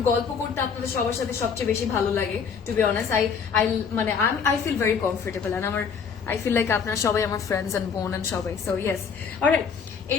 গল্প করতে আপনাদের সবার সাথে সবচেয়ে বেশি ভালো লাগে, to be honest. I feel very comfortable, and I feel like আপনারা সবাই আমার ফ্রেন্ডস এন্ড বোন এন্ড সবাই, সো ইয়েস। অলরাইট,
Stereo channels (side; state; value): right; quieter; 6.3 dB